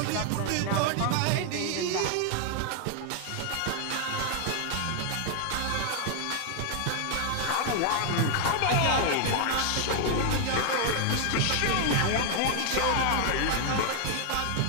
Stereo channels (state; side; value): different; both; correlation 0.00